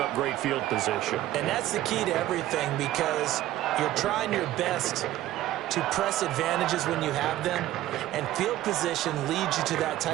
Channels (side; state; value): left; quieter; 14.5 dB